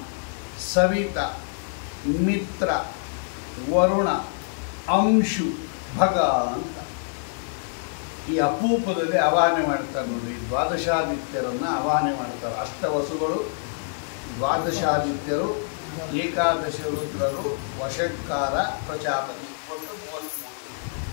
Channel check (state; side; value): silent; right; digital silence